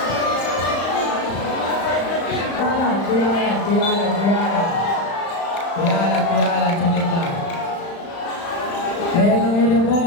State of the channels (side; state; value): right; late; 35 ms